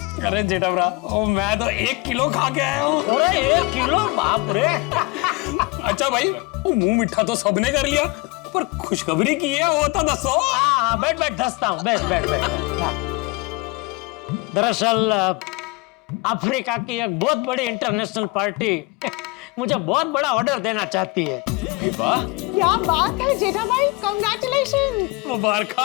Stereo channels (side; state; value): right; quieter; 24.1 dB